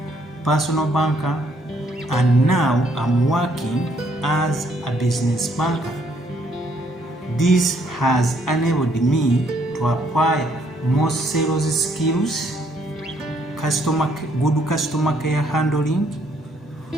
personal banker, and now I'm working as a business banker. This has enabled me to acquire more sales skills, good customer care handling,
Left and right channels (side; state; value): both; normal; correlation 0.69